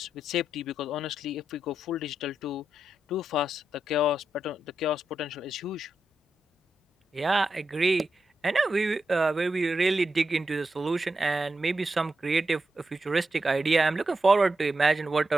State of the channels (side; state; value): both; normal; correlation 0.87